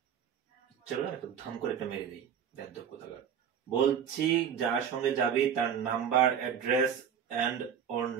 চলো না, একটু ধাম করে একটা মেরে দিই, বেদ্যপ কোথাকার। বলছি যার সঙ্গে যাবি তার নাম্বার, অ্যাড্রেস এন্ড ওর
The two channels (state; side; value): quieter; left; 8.0 dB